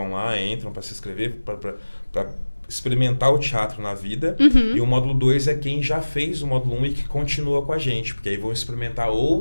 lá, entram para se inscrever, para experimentar o teatro na vida. E o módulo 2 é quem já fez o módulo 1 e que continua com a gente, porque aí vão experimentar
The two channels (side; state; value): both; inverted; correlation -1.00